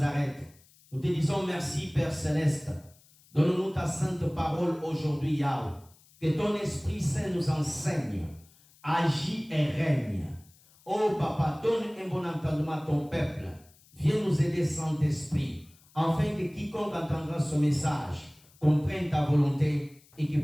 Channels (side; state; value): left; noise; hiss, 28 dB below the sound